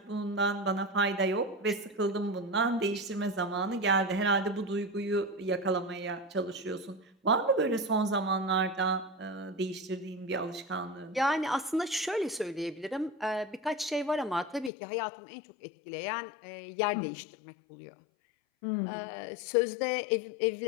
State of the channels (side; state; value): right; drops out; at 14.7 s